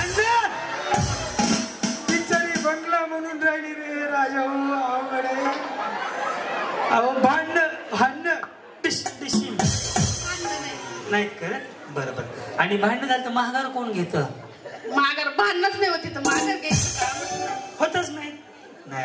बिचारी बंगला म्हणून राहिली रे राजा अवघड आहे अहो भांडणं नाहीत करत बरं बरं आणि भांडण झालं तर महागार कोण घेत माघार भांडणच नाही होती तर माघार घ्यायचं होतच नाही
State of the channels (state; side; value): identical; both; correlation 1.00